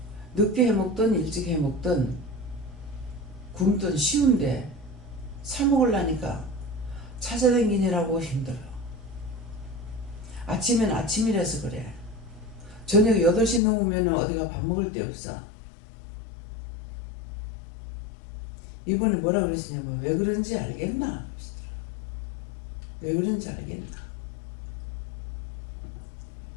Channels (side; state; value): right; drops out; at 13.6 s